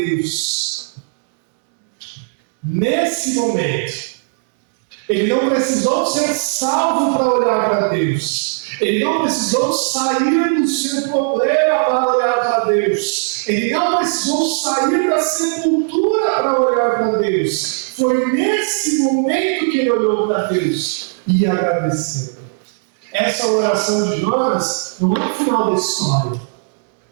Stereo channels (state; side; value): silent; left; digital silence